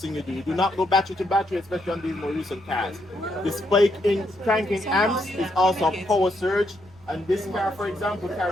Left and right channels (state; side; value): noise; right; hum, 27 dB below the sound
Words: thing you do. You do not go battery to battery, especially on these more recent cars. The spike in cranking amps is also a power surge, and this car, for example,